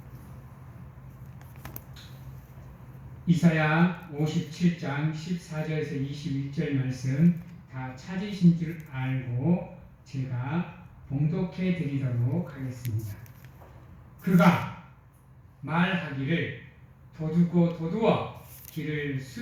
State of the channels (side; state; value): both; identical; correlation 1.00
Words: 이사야 57장 14절에서 21절 말씀 다 찾으신 줄 알고 제가 봉독해 드리도록 하겠습니다. 그가 말하기를 도두고 도두어 길을